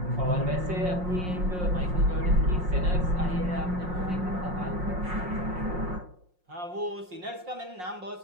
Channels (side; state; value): left; late; 5.6 ms